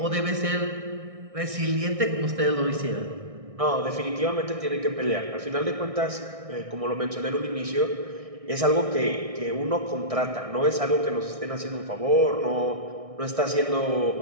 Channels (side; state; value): left; late; 1.6 ms